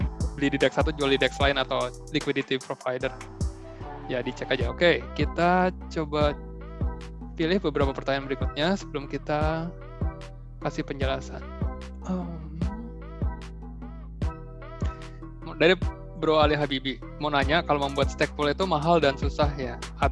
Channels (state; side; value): identical; both; correlation 1.00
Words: beli di DEX satu, jual di DEX lain, atau liquidity provider. Ya dicek aja. Oke, kita coba pilih beberapa pertanyaan berikutnya sebelum kita kasih penjelasan. Dari Bro Ali Habibi mau nanya, kalau membuat stake pool itu mahal dan susah ya